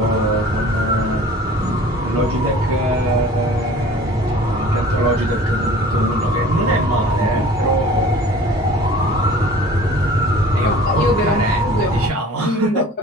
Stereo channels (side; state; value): both; normal; correlation 0.46